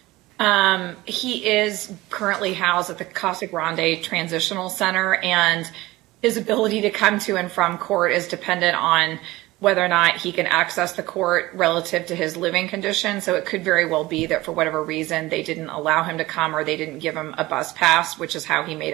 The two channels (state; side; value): quieter; left; 18.9 dB